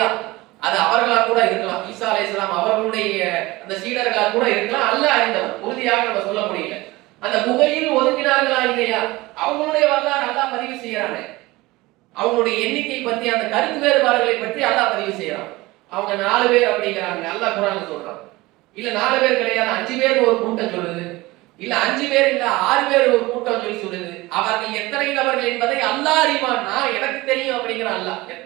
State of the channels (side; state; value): left; quieter; 20.5 dB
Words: அது அவர்களா கூட இருக்கலாம். ஈசா அலைஹிஸ்ஸலாம் அவர்களுடைய அந்த சீடர்களா கூட இருக்கலாம். அல்லாஹ் அறிந்தவன், உறுதியாக நம்ம சொல்ல முடியல. அந்த புகையில் ஒதுங்கினார்களா இல்லையா, அவங்களுடைய வரலாறு அல்லாஹ் பதிவு செய்யறாங்க. அவங்களுடைய எண்ணிக்கை பற்றி அந்த கருத்து வேறுபாடுகளை பற்றி அல்லாஹ் பதிவு செய்யறான். அவங்க 4 பேர் அப்படிங்கிறாங்க, அல்லாஹ் குர்ஆன்ல சொல்றான். இல்ல 4 பேர் கிடையாது, 5 பேர் ஒரு கூட்டம் சொல்லுது. இல்ல 5 பேர் இல்ல 6 பேர் ஒரு கூட்டம் சொல்லி சொல்லுது. அவர்கள் எத்தனை நபர்கள் என்பதை அல்லாஹ் அறிவான், நான் எனக்கு தெரியும் அப்படிங்கிற அல்லாஹ்.